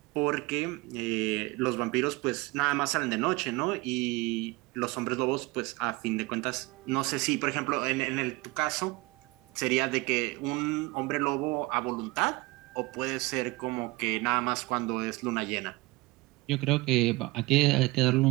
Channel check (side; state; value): left; quieter; 22.5 dB